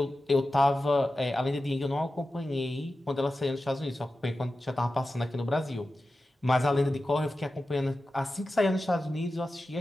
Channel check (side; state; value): both; normal; correlation 0.93